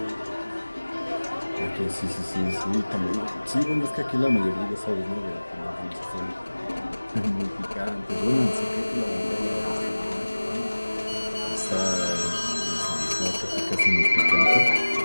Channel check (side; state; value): both; inverted; correlation -1.00